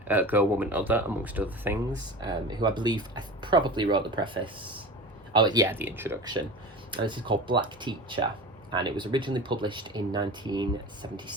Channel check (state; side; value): normal; both; correlation 0.33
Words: Girl, Woman, Other, amongst other things, who I believe probably wrote the preface. Oh yeah, the introduction. And this is called Black Teacher, and it was originally published in